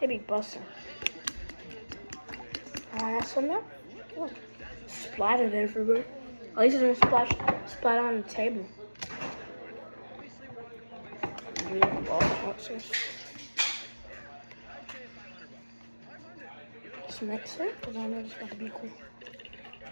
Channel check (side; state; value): both; inverted; correlation -1.00